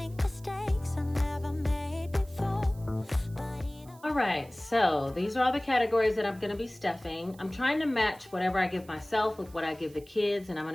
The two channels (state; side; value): noise; right; hiss, 25 dB below the sound